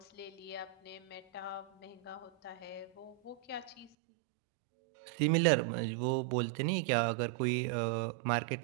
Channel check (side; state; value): left; drops out; at 3.9 s